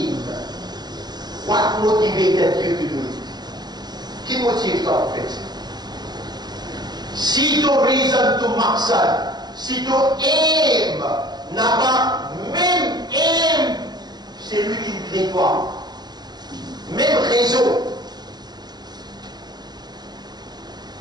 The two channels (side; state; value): left; late; 0.20 ms